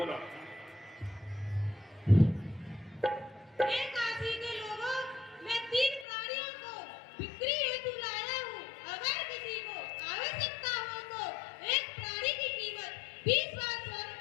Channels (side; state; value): right; drops out; at 6.1 s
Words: हे काशी के लोगों, मैं 3 प्राणियों को बिक्री हेतु लाया हूँ। अगर किसी को आवश्यकता हो तो एक प्राणी की कीमत 20